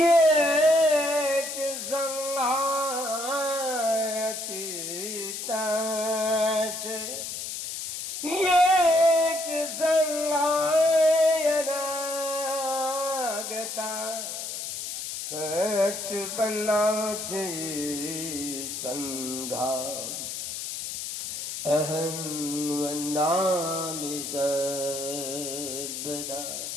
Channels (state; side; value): noise; left; hiss, 6 dB below the sound